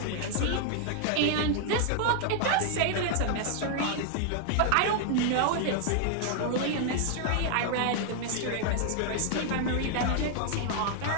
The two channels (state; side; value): different; both; correlation 0.00